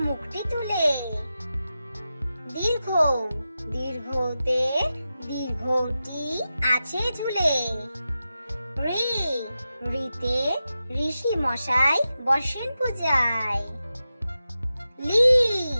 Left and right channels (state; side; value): inverted; both; correlation -0.92